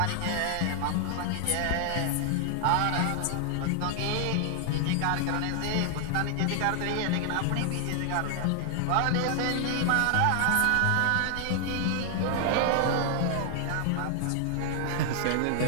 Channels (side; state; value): both; different; correlation 0.00